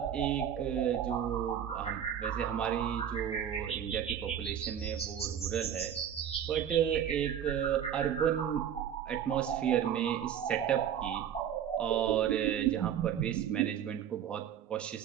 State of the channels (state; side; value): quieter; left; 9.2 dB